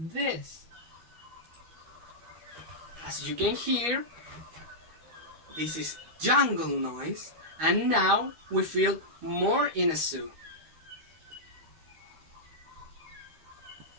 As you can hear, this is jungle noise, and now we feel more in a zoo.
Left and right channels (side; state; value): left; late; 13 ms